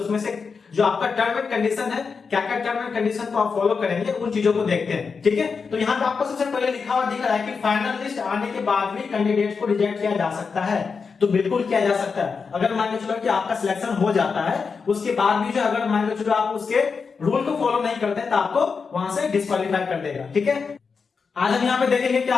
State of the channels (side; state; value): right; quieter; 5.3 dB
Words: से जो आपका टर्म एंड कंडीशन है, क्या क्या टर्म एंड कंडीशन को आप फॉलो करेंगे, उन चीजों को देखते हैं। ठीक है, तो यहाँ पे आपको सबसे पहले लिखा हुआ दिख रहा है कि फाइनल लिस्ट आने के बाद भी कैंडिडेट को रिजेक्ट किया जा सकता है। तो बिल्कुल किया जा सकता है। अगर मान के चलो कि आपका सिलेक्शन हो जाता है, उसके बाद भी जो अगर मान के चलो आप उसके रूल को फॉलो नहीं करते हैं तो आपको वहां से डिस्क्वालीफाई कर देगा। ठीक है, आज हम यहाँ पे देखेंगे कि